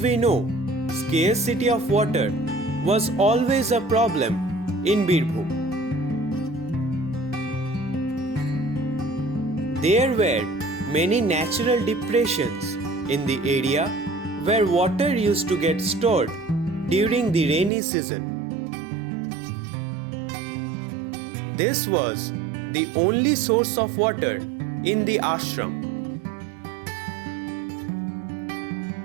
know, scarcity of water was always a problem in Birbhum. There were many natural depressions in the area where water used to get stored during the rainy season. This was the only source of water in the ashram.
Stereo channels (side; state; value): left; drops out; at 17.7 s